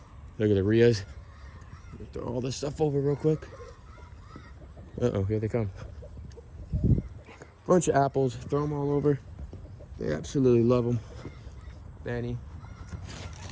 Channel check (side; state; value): both; identical; correlation 1.00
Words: Look at the Rias. Throw all this stuff over real quick. Uh-oh, here they come. Bunch of apples, throw them all over. They absolutely love them. Danny.